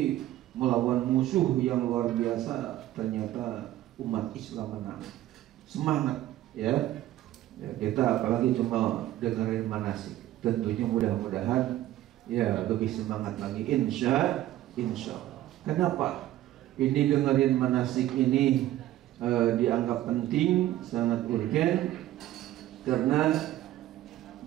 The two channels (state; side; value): quieter; left; 14.1 dB